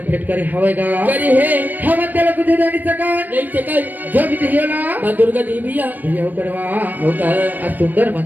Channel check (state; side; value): late; left; 0.087 ms